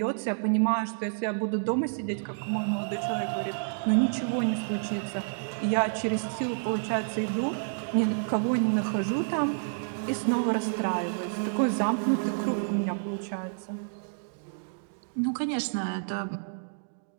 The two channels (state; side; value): silent; left; digital silence